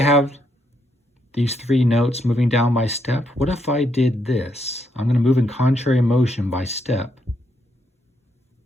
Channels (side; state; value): both; normal; correlation 0.76